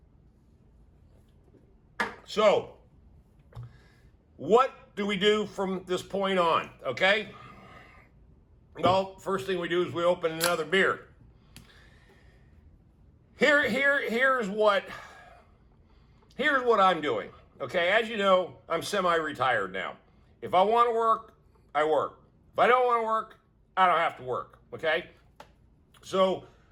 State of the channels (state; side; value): identical; both; correlation 1.00